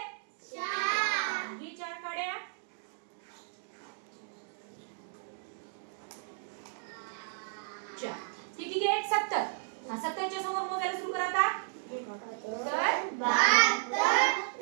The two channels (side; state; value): left; silent; digital silence